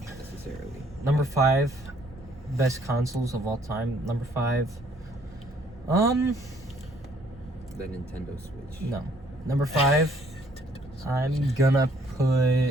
necessarily. Number 5, best consoles of all time. Number 5, The Nintendo Switch. no. Number 5, I'm gonna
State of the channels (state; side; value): normal; both; correlation 0.63